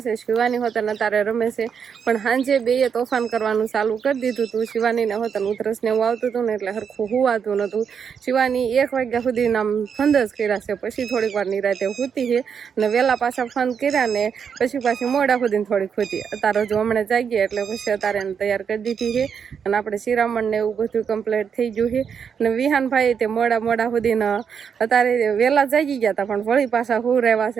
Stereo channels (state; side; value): quieter; left; 7.0 dB